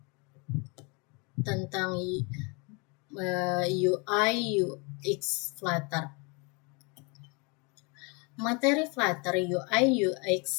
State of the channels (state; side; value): quieter; right; 31.0 dB